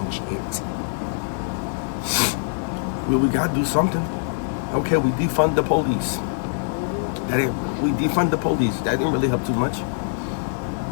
it? We got to do something. Okay, we defund the police. We defund the police. That didn't really help too much.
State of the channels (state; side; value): silent; right; digital silence